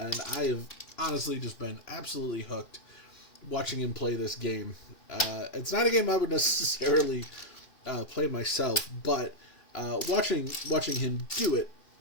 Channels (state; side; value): late; right; 2.7 ms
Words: I have honestly just been absolutely hooked watching him play this game. It's not a game I would necessarily play myself, but watching him do it